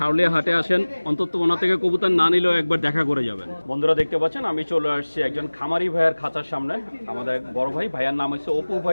হাটে আসেন অন্তত ওনার থেকে কবুতর না নিলেও একবার দেখা করে যাবেন। বন্ধুরা দেখতে পাচ্ছেন আমি চলে আসছি একজন খামারি ভাইয়ের খাঁচার সামনে। আমাদের এক বড় ভাই, ভাইয়ার নাম হচ্ছে অপু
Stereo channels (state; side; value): inverted; both; correlation -1.00